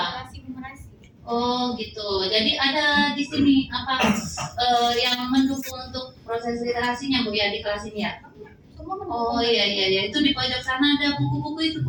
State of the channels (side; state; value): both; identical; correlation 1.00